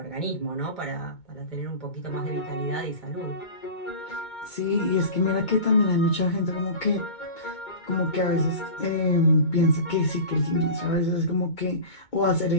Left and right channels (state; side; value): late; right; 2.2 ms